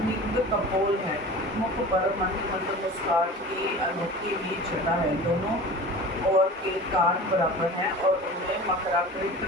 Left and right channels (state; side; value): normal; both; correlation 0.37